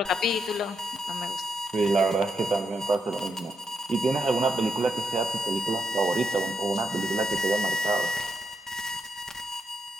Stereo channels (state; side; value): normal; both; correlation 0.81